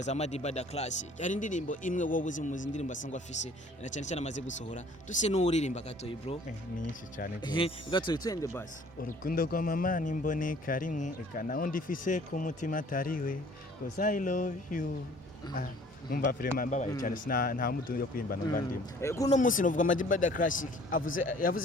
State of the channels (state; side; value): normal; both; correlation 0.54